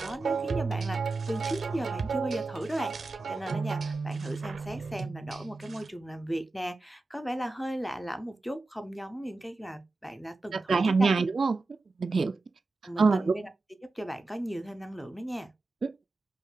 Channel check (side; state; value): left; quieter; 3.3 dB